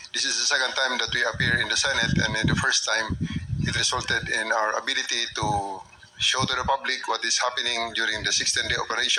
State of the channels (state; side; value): identical; both; correlation 1.00